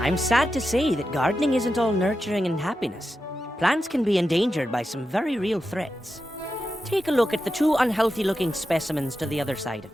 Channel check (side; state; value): both; normal; correlation 0.89